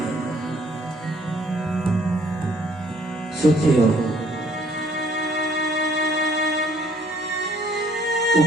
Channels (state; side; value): normal; both; correlation 0.61